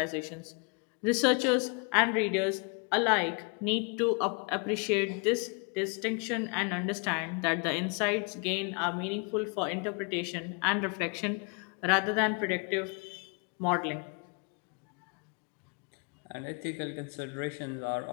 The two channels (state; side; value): quieter; right; 35.5 dB